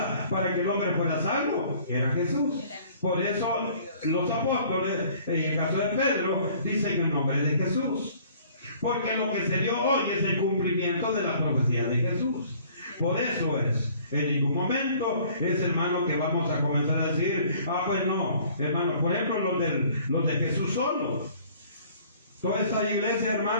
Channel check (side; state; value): both; inverted; correlation -0.54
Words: para que el hombre fuera salvo? Era Jesús. Por eso los apóstoles, en el caso de Pedro, dicen el nombre de Jesús. Porque lo que se dio hoy es el cumplimiento de la profecía de Jesús. Por eso es. En ningún momento es, hermano, que vamos a comenzar a decir, pues no, hermano, por ejemplo, los de Jesús solo. Toda esta iglesia,